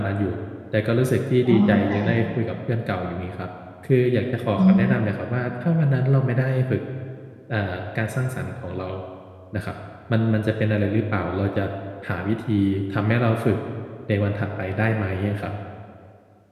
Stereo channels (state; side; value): identical; both; correlation 1.00